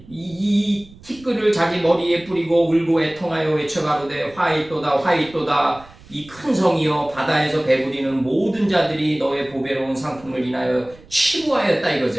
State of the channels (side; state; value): right; noise; rumble, 23 dB below the sound